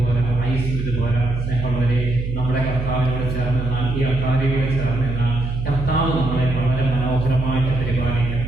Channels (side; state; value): right; noise; hum, 5 dB below the sound